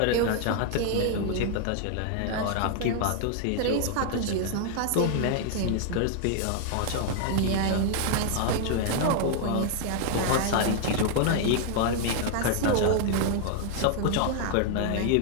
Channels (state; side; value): different; both; correlation 0.00